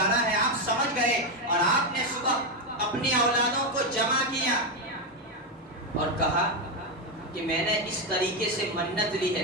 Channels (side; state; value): both; normal; correlation 0.08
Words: ہے آپ سمجھ گئے اور آپ نے صبح اپنی اولادوں کو جمع کیا اور کہا کہ میں نے اس طریقے سے منت لی ہے,